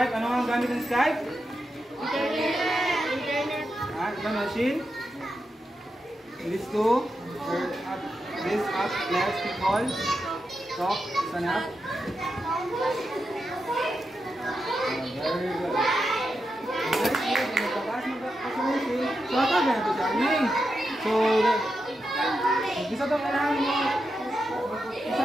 Ano ang gamit ng Skype? Internet. The machine. This app lets people talk. Sana. Very good. So, bisa itong kailangan mo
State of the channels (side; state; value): both; normal; correlation 0.87